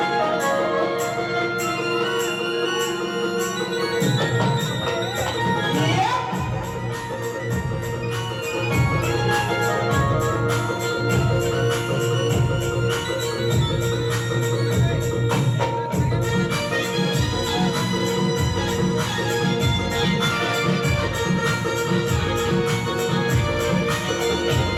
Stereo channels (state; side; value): identical; both; correlation 1.00